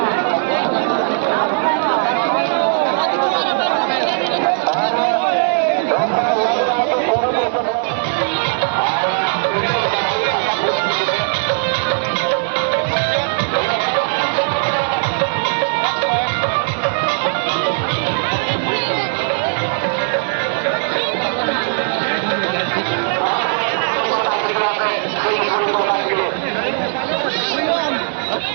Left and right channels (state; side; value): silent; left; digital silence